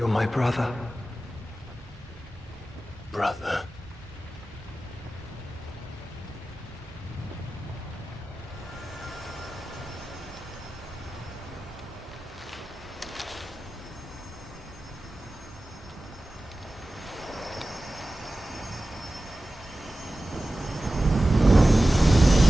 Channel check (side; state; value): both; normal; correlation 0.95